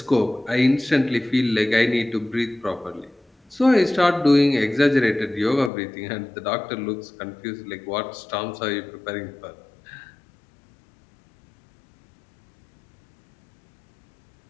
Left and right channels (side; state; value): right; drops out; at 5.7 s